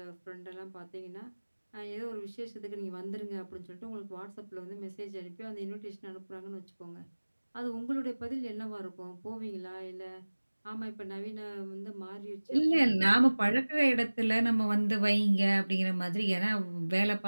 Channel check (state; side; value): inverted; both; correlation -1.00